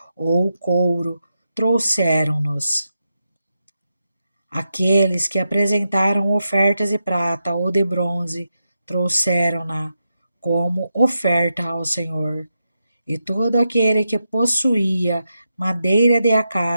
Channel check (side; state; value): both; inverted; correlation -0.87